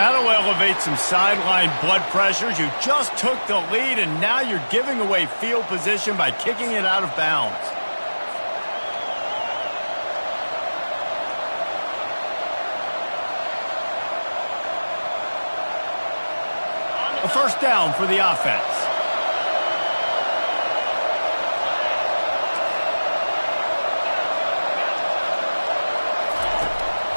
elevate some sideline blood pressures. You just took the lead and now you're giving away field position by kicking it out of bounds. A first down for the offense.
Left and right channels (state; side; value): inverted; both; correlation -1.00